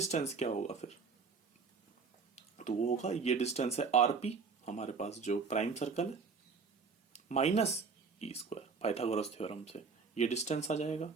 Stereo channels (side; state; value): left; quieter; 5.1 dB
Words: क्या होगा फिर, तो वो होगा, ये डिस्टेंस है आरपी हमारे पास जो प्राइम सर्कल है, minus E square Pythagoras theorem से ये डिस्टेंस आ जाएगा।